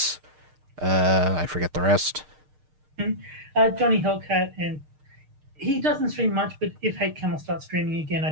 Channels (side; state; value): left; late; 6.5 ms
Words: I forget the rest. Johnny Hellcat, and he doesn't stream much, but if Hate Camel starts streaming again,